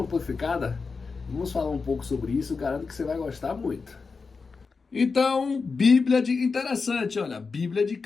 Vamos falar um pouco sobre isso, garanto que você vai gostar muito. Então, interessante, olha, Bíblia de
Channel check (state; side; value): quieter; right; 4.7 dB